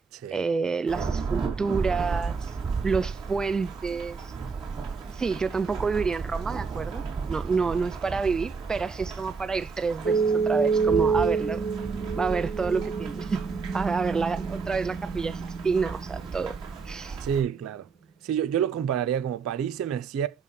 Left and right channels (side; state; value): left; quieter; 5.0 dB